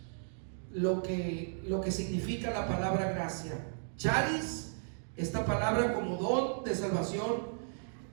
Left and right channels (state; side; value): silent; left; digital silence